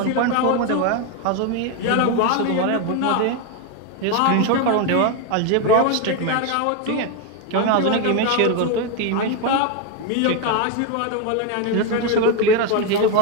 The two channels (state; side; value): different; both; correlation 0.02